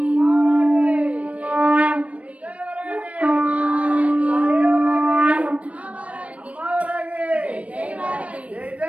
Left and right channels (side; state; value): left; late; 0.065 ms